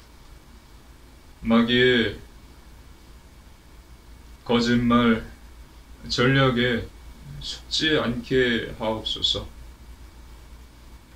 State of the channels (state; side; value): identical; both; correlation 1.00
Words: 마귀의 거짓말, 전략에 속지 않게 하옵소서.